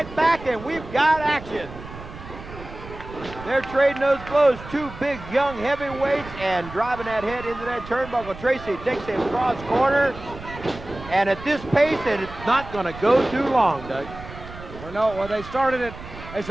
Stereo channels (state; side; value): noise; right; rumble, 14 dB below the sound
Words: back, and we've got action. They're trading those blows. Two big, young heavyweights and driving that head into that turnbuckle. Tracy takes him cross corner. And at this pace, it's not going to go too long, Doug. Well, they started it. There's